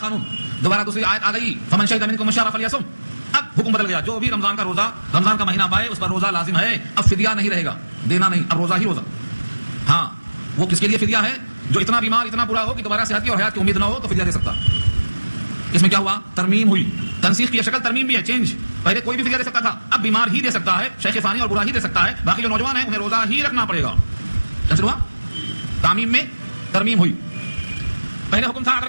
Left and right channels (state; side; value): inverted; both; correlation -1.00